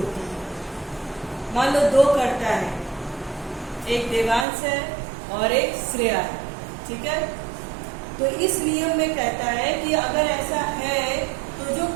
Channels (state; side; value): drops out; left; at 4.5 s